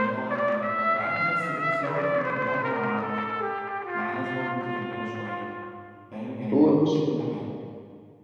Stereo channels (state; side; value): identical; both; correlation 1.00